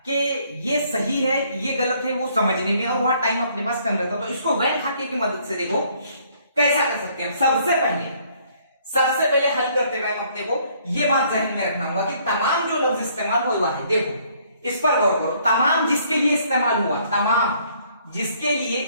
कि ये सही है ये गलत है वो समझने में, और वहां टाइम अपने पास कम रहता। तो इसको वैन खाके की मदद से देखो कैसा कर सकते हैं। सबसे पहले हल करते हुए अपने को ये बात जहन में रखना होगा कि तमाम जो लफ्ज इस्तेमाल हुआ है, देखो इस पर गौर करो, तमाम जिसके लिए इस्तेमाल हुआ, तमाम जिसके लिए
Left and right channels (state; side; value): inverted; both; correlation -0.64